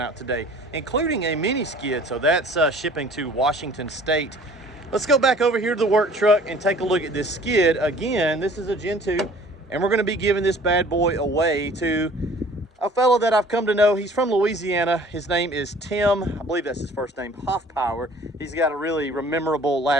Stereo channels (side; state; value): both; normal; correlation 0.50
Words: out today, including a mini skid, so that's shipping to Washington State. Let's go back over here to the work truck and take a look at this skid. Again, this is a Gen 2. And we're going to be giving this bad boy away to a fellow that I've come to know. He's from Louisiana. His name is Tim. I believe that's his first name, Hoffpower. He's got a really memorable